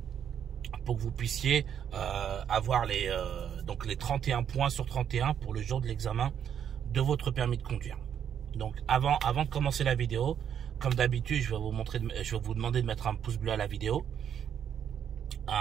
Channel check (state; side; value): quieter; left; 8.8 dB